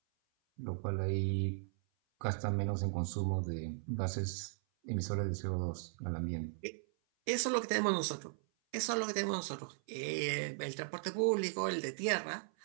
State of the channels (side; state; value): left; silent; 53 dB below the other